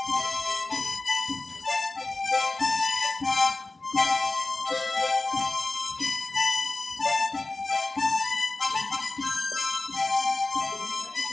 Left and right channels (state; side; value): quieter; right; 3.3 dB